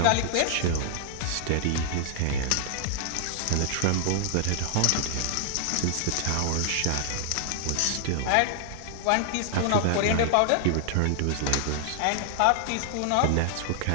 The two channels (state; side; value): different; both; correlation 0.00